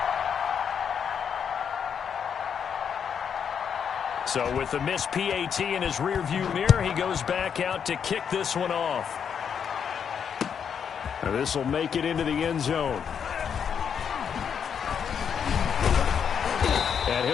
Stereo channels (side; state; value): right; quieter; 7.5 dB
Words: So with the missed PAT in his rearview mirror, he goes back out to kick this one off. Now this will make it into the end zone. And